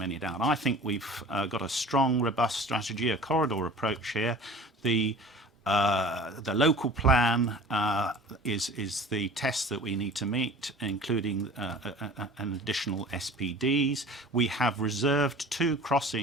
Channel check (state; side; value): normal; both; correlation 0.42